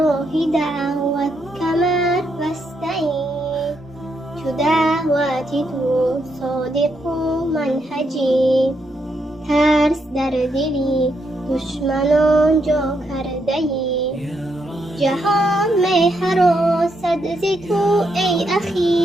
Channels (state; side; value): normal; both; correlation 0.79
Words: دعوت کمر واستعین، چو دعوتی تو صادق و منهجی، ترس در دلی دشمنان جا کرده ای، جهان می هراسد ز تو ای